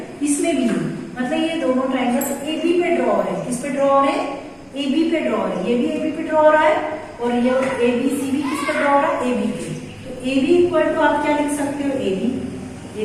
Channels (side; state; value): both; identical; correlation 1.00